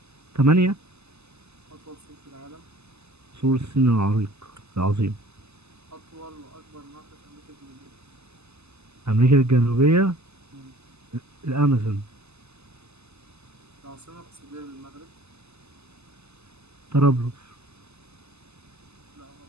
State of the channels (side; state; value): left; late; 0.80 ms